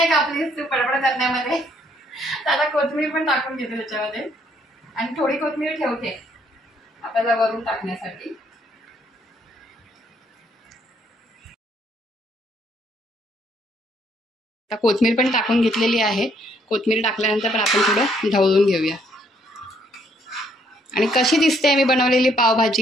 कापलीस तू पडपड करण्यामध्ये. तर आता कोथिंबीर पण टाकून घेते त्याच्यामध्ये. आणि थोडी कोथिंबीर ठेवते आपल्याला वरून टाकण्यासाठी. आता कोथिंबीर पण टाकून घेतलेली आहे. कोथिंबीर टाकल्यानंतर पण आपण थोडं ढवळून घेऊया. आणि कशी दिसते मी बनवलेली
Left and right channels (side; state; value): both; normal; correlation 0.68